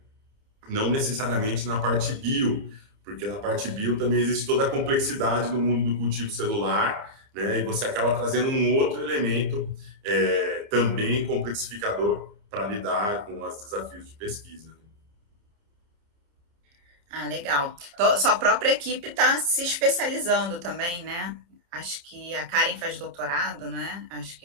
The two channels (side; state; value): left; late; 29 ms